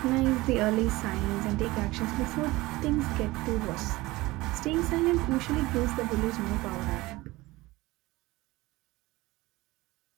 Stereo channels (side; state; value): left; quieter; 20.1 dB